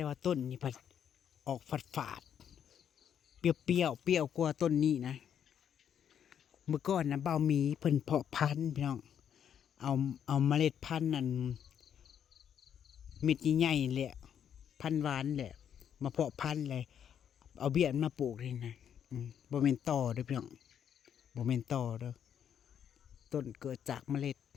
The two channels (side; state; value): right; quieter; 8.8 dB